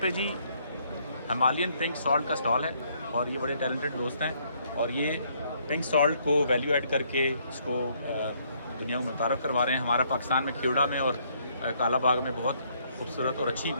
پہ جی ہمالین پنک سالٹ کا سٹال ہے اور یہ بڑے ٹیلنٹڈ دوست ہیں اور یہ پنک سالٹ کو ویلیو ایڈ کر کے اس کو دنیا کو متعارف کروا رہے ہیں. ہمارا پاکستان میں کھیوڑا میں اور کالا باغ میں بہت خوبصورت اور اچھی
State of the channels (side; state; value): both; inverted; correlation -0.68